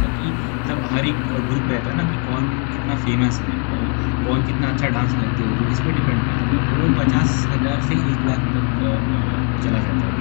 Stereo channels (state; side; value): quieter; right; 39.5 dB